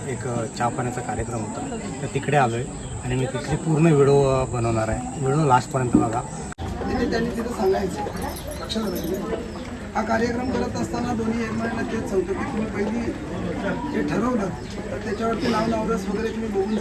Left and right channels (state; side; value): identical; both; correlation 1.00